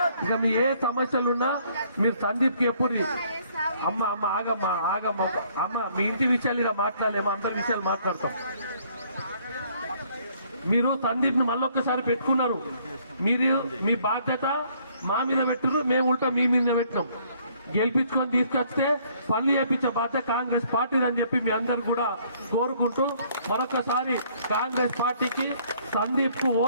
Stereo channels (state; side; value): inverted; both; correlation -0.63